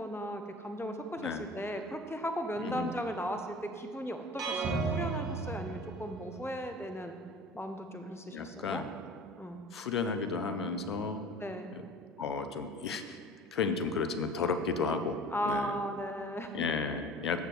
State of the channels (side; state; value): both; normal; correlation 0.42